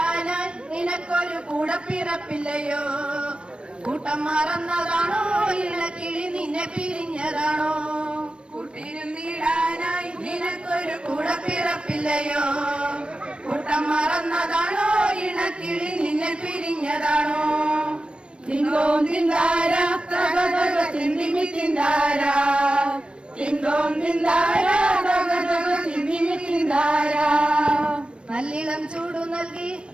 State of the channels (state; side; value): late; left; 0.057 ms